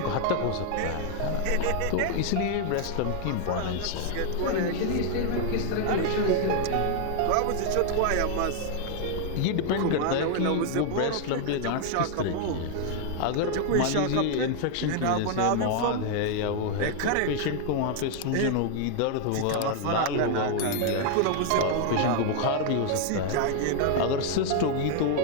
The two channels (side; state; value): both; different; correlation 0.00